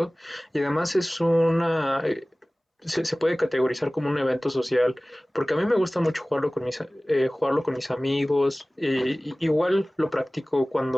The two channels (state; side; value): normal; both; correlation 0.98